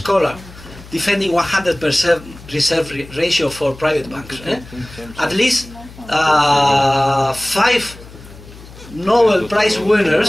defending 100% reserve ratio for private banks. At least 5 Nobel Prize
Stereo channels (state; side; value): noise; left; hum, 19 dB below the sound